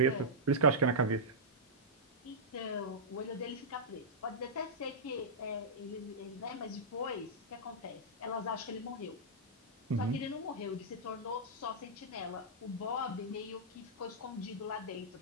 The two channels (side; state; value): both; normal; correlation -0.12